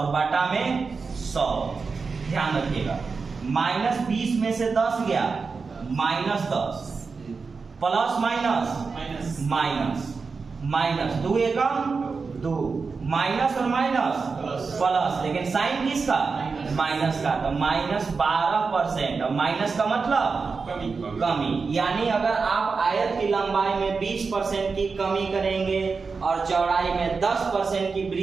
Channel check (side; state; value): left; quieter; 4.8 dB